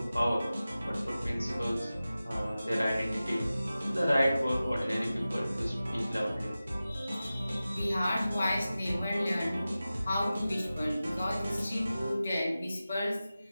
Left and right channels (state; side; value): inverted; both; correlation -0.95